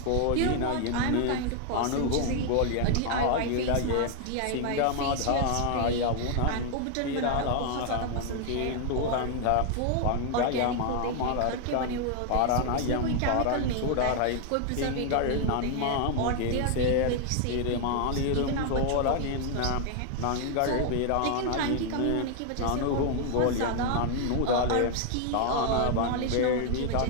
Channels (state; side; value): different; both; correlation 0.00